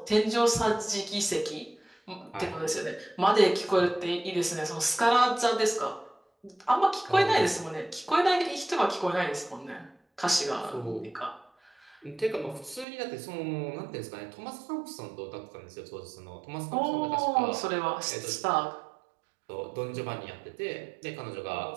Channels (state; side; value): drops out; left; at 12.9 s